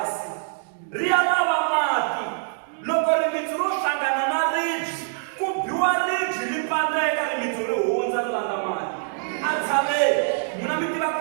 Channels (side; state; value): left; silent; digital silence